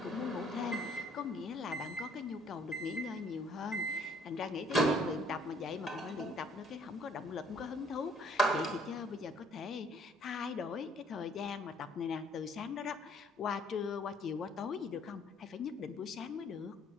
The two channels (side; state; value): both; normal; correlation 0.61